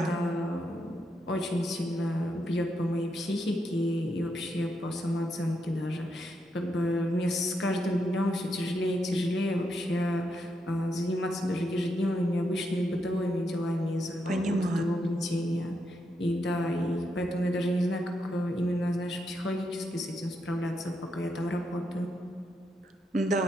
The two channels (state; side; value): normal; both; correlation 0.81